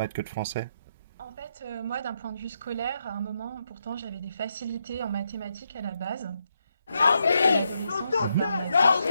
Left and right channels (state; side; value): inverted; both; correlation -0.81